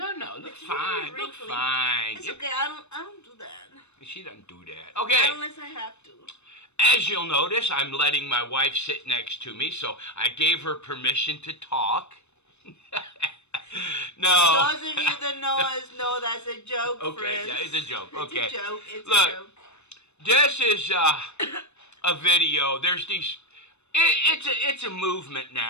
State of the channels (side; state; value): right; late; 0.81 ms